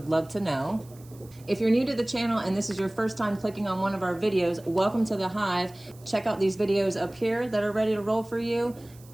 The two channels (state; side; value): noise; right; hiss, 25 dB below the sound